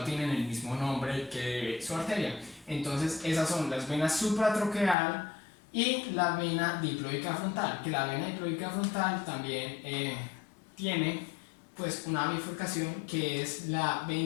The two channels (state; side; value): drops out; right; at 5.0 s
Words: tienen el mismo nombre que su arteria. Entonces esas son las venas supratroqueal y la vena diploica frontal, que la vena diploica frontal también tiene pues una bifurcación, que es la